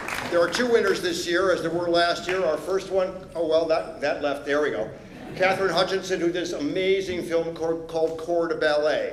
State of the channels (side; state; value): both; identical; correlation 1.00